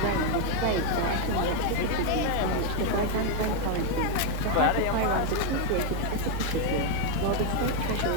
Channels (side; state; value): both; different; correlation 0.01